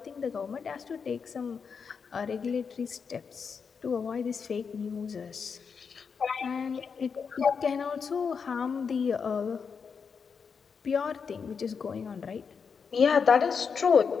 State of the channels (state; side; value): quieter; right; 6.0 dB